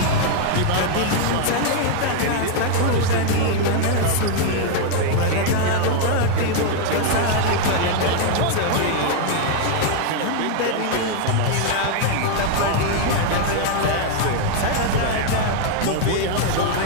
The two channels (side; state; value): both; different; correlation 0.00